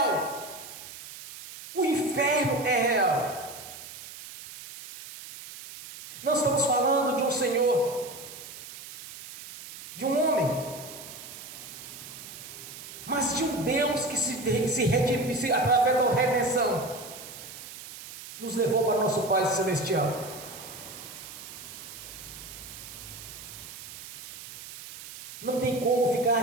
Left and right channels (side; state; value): right; noise; hiss, 13 dB below the sound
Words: O inferno é real. Não estamos falando de um Senhor, de um homem, mas de um Deus que se redime, através da redenção, nos levou para o nosso Pai Celestial. Não tem como